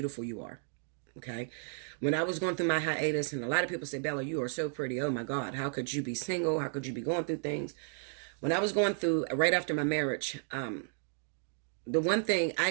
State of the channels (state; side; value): silent; left; 56 dB below the other